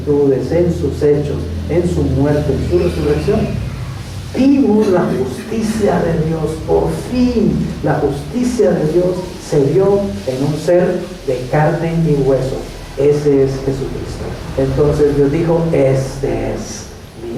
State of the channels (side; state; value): both; identical; correlation 1.00